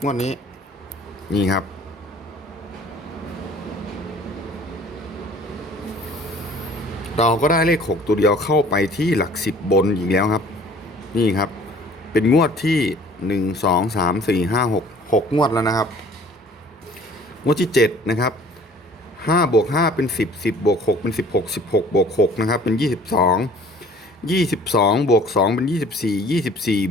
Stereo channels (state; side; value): normal; both; correlation 0.51